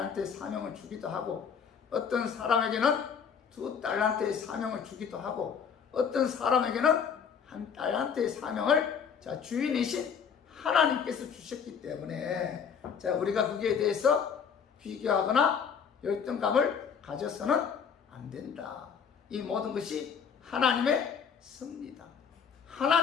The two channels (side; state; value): right; quieter; 6.9 dB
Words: 사명을 주기도 하고 어떤 사람에게는 2달란트의 사명을 주기도 하고 어떤 사람에게는 1달란트의 사명을 자 주인이신 하나님께서 주셨기 때문에 자 우리가 거기에 대해서 비교하거나 열등감을 가져서는 안 된다. 이 모든 것이 하나님의 섭리다.